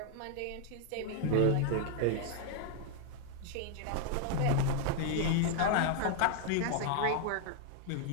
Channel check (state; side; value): different; both; correlation 0.00